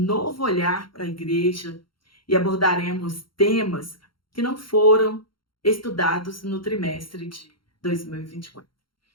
olhar para a igreja e abordaremos temas que não foram estudados no trimestre de 2024.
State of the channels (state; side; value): late; right; 0.73 ms